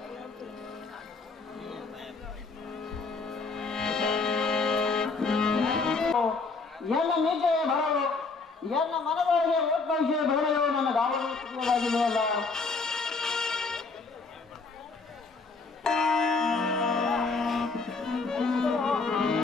ಎಲ್ಲ ನಿಜವೇ ಬರಲು ಎಲ್ಲ ಮನದೊಳಗೆ ಒಟ್ಟವಿಷಯ ಬೇರೆಯೋ ನನ್ನ ಗಾವಲಾಗಿದೆಯಲ್ಲ.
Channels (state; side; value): quieter; right; 4.2 dB